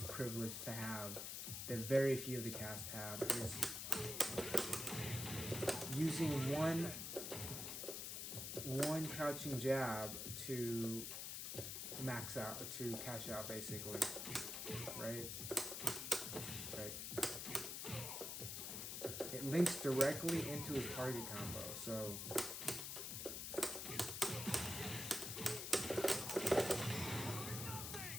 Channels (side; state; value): left; noise; hiss, 4 dB below the sound